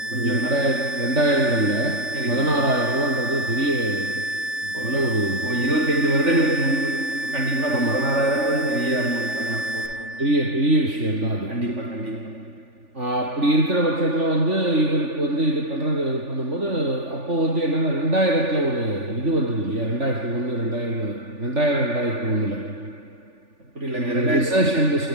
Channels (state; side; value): late; left; 3.4 ms